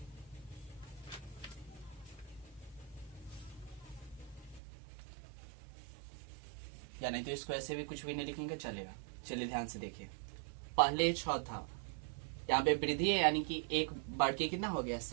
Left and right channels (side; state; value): left; drops out; at 4.6 s